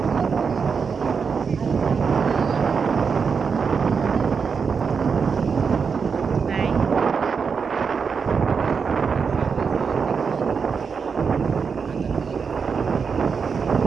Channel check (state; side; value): quieter; left; 5.8 dB